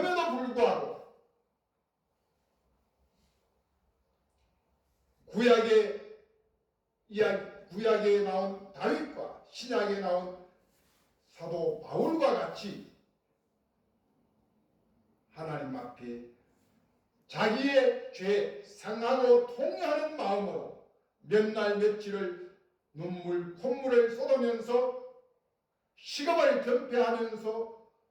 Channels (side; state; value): both; identical; correlation 1.00